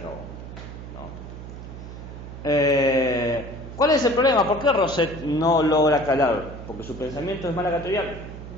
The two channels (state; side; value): noise; right; hum, 12 dB below the sound